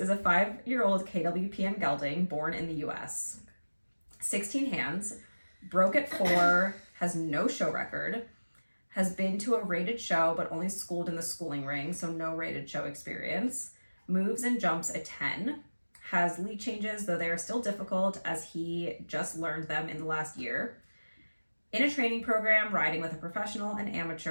a 5-year-old KWPN gelding born in the US. 16 hands, broke at 4, has no show record, has been to a rated show but only schooled in the schooling ring, so no rated show experience, moves and jumps a 10, has lead changes, though they are still difficult as he just learned them in the last year. In a training program, riding with a professional and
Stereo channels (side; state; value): both; inverted; correlation -1.00